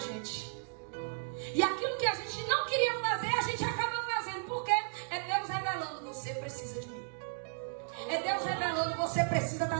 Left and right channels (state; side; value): silent; left; digital silence